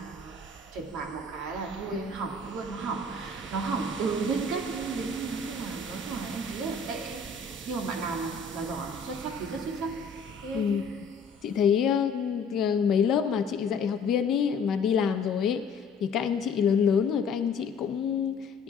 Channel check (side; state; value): right; quieter; 4.1 dB